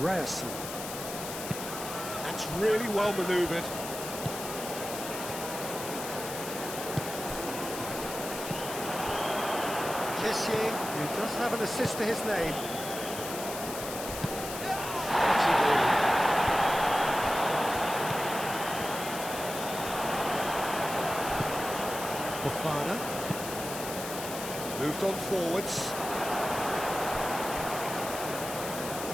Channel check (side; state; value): left; noise; hiss, 8 dB below the sound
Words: Ryzen. That's really well manoeuvred. Kessié, who does have an assist to his name. Fofana. Moved on forwards.